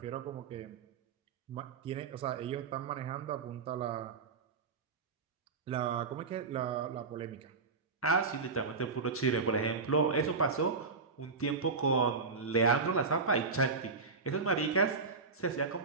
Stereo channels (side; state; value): left; quieter; 4.5 dB